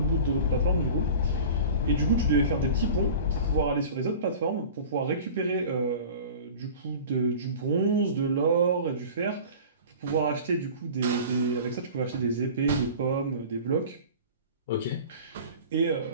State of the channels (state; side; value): inverted; both; correlation -0.39